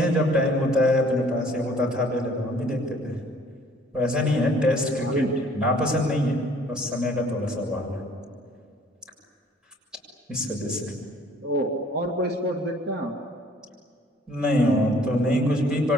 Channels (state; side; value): normal; both; correlation 0.57